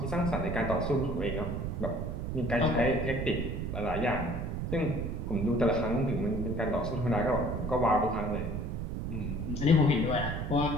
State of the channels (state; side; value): noise; right; rumble, 3 dB below the sound